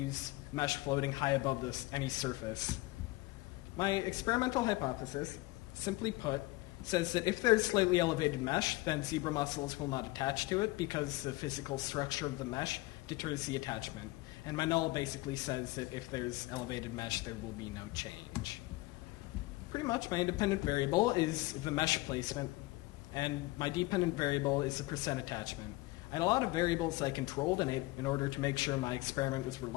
mesh floating high above any surface. My experimental hypothesis, simply put, says that if there's slightly elevated mesh, then zebra mussels will not attach to it because the physical structure of the mesh deters the attachment. And my null basically says that if there's elevated mesh, there will be no change. Pretty much my independent variable is the mesh placement, and my dependent variable is the percent attachment. I had a lot of variables I controlled in order to make sure my experiment was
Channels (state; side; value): quieter; right; 20.6 dB